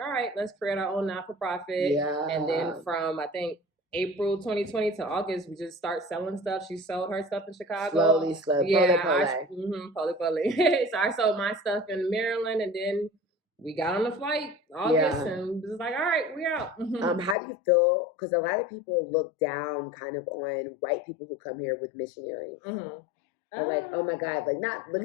right, let's create our own not-for-profit. And then from, I think, April 2020 to August, we just start selling stuff. She sold her stuff in Chicago. Slowly. Poly. So I sold my stuff in Maryland, and then we got on the flight August and was like, all right, we're out. How do you feel? Because a lot of people look down kind of on white people who come here with missionaries. Like, oh my God, like not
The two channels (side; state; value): right; drops out; at 17.4 s